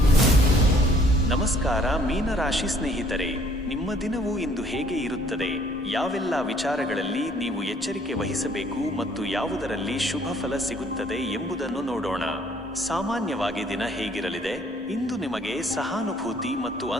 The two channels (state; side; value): normal; both; correlation 0.60